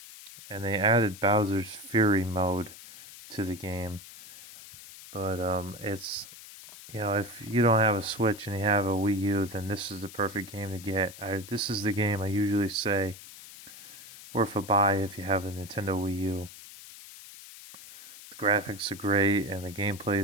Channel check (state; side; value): noise; left; hiss, 16 dB below the sound